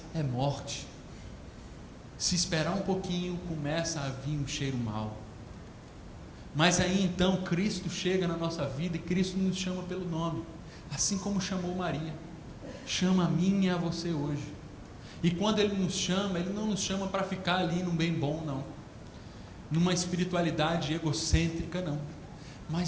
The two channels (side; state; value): both; identical; correlation 1.00